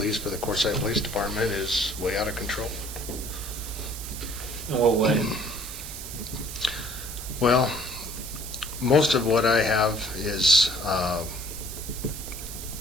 for the Quartzsite Police Department is way out of control. In what way? Well, most of what I have is,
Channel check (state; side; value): noise; right; hiss, 9 dB below the sound